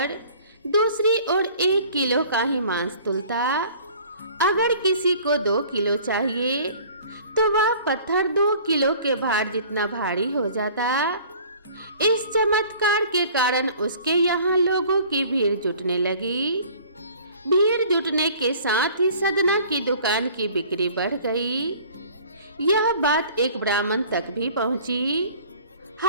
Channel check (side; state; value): both; inverted; correlation -0.49